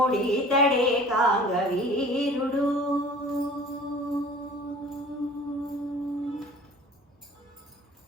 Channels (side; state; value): both; normal; correlation 0.46